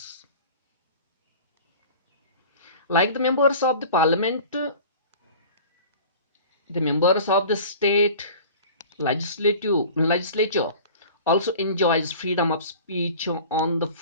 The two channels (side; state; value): both; inverted; correlation -0.42